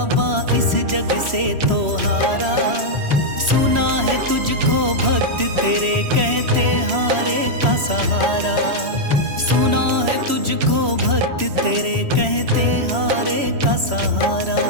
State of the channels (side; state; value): left; late; 3.0 ms